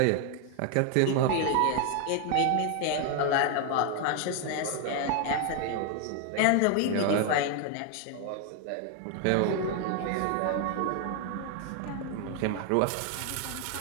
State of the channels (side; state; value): both; different; correlation 0.01